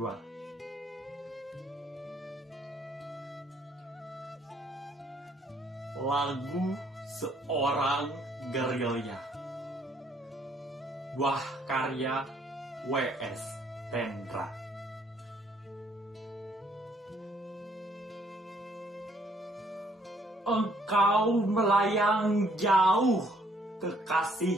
Lagu Seorang Gerilya, buah karya W.S. Tendra. Engkau melayang jauh,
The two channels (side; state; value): both; normal; correlation 0.65